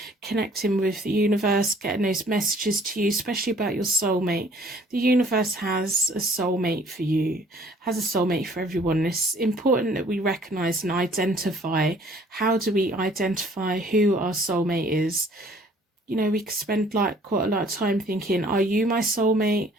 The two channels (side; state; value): both; normal; correlation 0.56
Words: connecting with the universe, getting those messages to you, especially about your soulmate. The universe has a soulmate for you, has a soulmate for everyone. It's important that we recognize and identify. How do we identify who our soulmate is? You know, we could spend like quite a lot of time thinking, are you my soulmate?